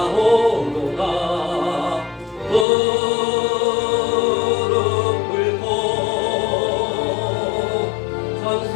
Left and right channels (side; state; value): right; drops out; at 2.7 s